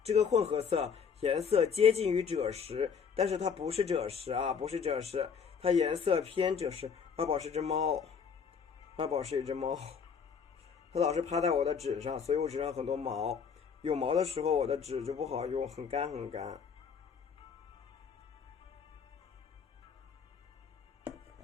这个混合色颜色接近于赭石，但是它不是赭石啊，不是赭石，它颜色偏赭石。2宝是只猫，2宝是一只猫，它老是趴在我的纸上，所以我纸上很多毛，有毛的时候我的纸就不好用，很干很干。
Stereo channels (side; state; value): right; quieter; 6.5 dB